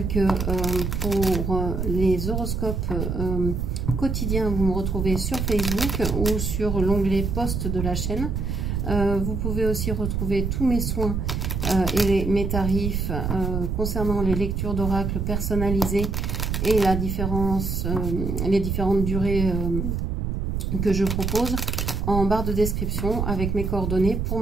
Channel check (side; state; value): right; noise; rumble, 1 dB below the sound